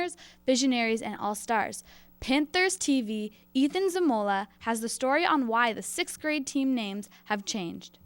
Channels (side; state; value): both; identical; correlation 1.00